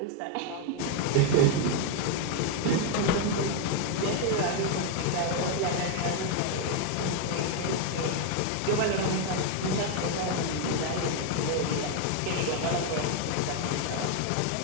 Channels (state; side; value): different; both; correlation 0.01